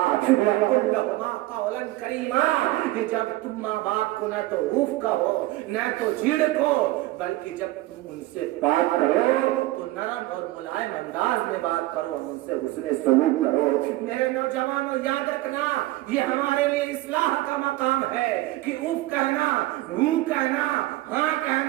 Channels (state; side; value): quieter; left; 17.9 dB